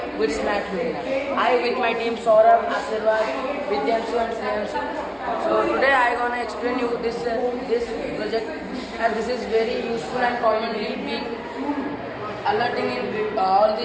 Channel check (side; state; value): both; identical; correlation 1.00